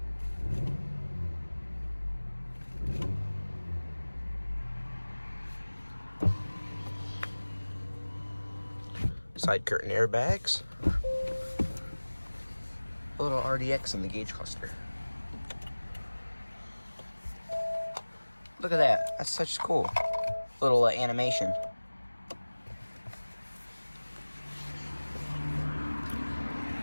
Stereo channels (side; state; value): both; inverted; correlation -1.00